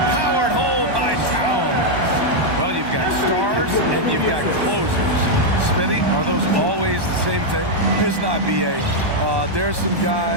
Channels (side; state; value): left; late; 1.1 ms